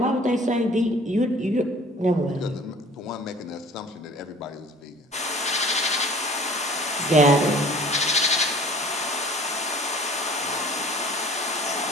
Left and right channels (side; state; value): both; normal; correlation 0.47